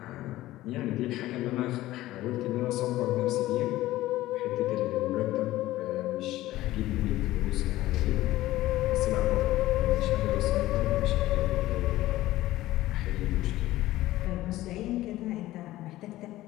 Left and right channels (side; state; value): right; quieter; 16.1 dB